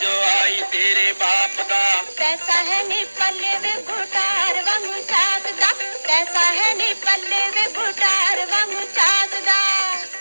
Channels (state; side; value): inverted; both; correlation -1.00